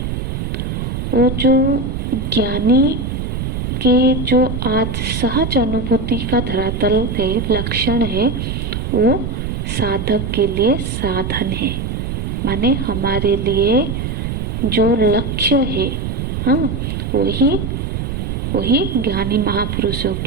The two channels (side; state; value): right; noise; rumble, 3 dB below the sound